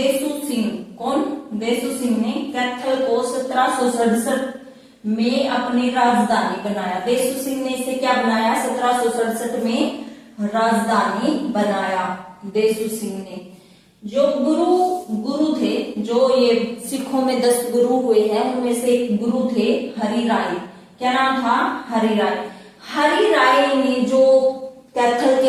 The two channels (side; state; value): both; identical; correlation 1.00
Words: सिंह। कौन? देसू सिंह ने कैथल को 1767 में अपनी राजधानी बनाया। देसू सिंह ने इसे क्या बनाया? 1767 में राजधानी बनाया देसू सिंह ने। जो गुरु थे, जो ये सिखों में 10 गुरु हुए हैं उनमें से एक गुरु थे हरि राय। क्या नाम था? हरि राय। हरि राय ने जो कैथल